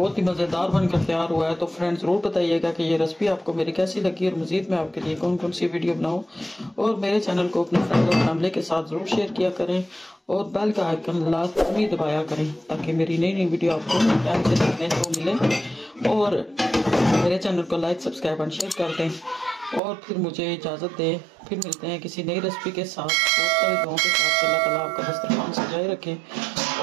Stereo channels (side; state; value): left; drops out; at 19.8 s